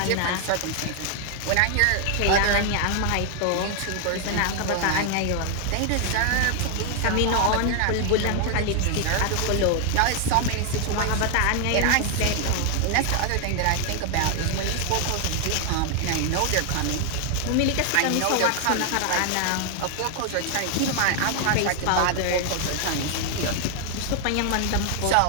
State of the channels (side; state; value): both; different; correlation 0.00